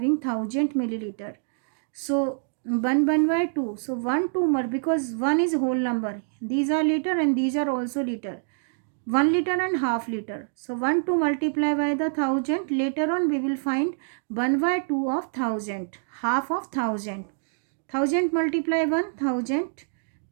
1000 milliliter. So 1/2. So 1 2 more because 1 is whole number. These are liter and these are also liter. 1 liter and half liter. So 1 to multiply by the 1000. Later on we will find 1/2 of 1000. Half of 1000. 1000 multiply 1000.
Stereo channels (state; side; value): silent; left; digital silence